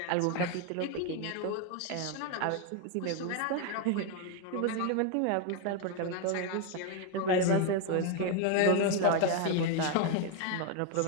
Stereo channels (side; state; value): both; different; correlation 0.01